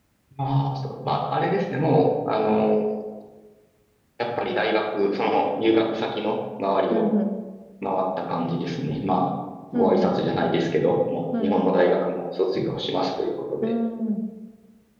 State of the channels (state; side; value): identical; both; correlation 1.00